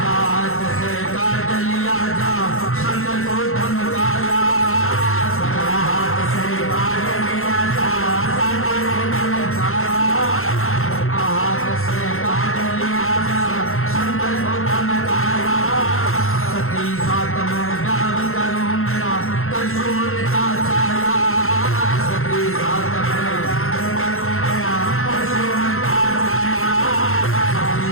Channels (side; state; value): right; late; 0.62 ms